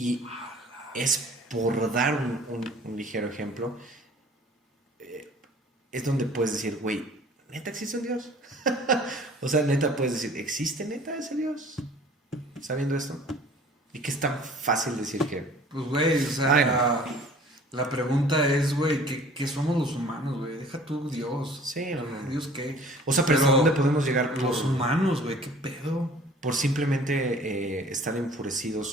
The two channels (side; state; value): both; normal; correlation 0.49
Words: es por dar un ligero ejemplo. Es donde puedes decir, güey, ¿neta existe un Dios? O sea, neta puedes decir, ¿existe neta ese Dios? Sabiendo esto. Y que es tan fácil decir que... Pues, güey, o sea... Ay, no. La pregunta es, güey, ¿qué somos los humanos, güey? Deja tú Dios. Sí, no. ¿Dios qué? O sea, pero ¿hasta dónde podemos llegar? Los humanos, güey, ¿qué pedo? Por simplemente estar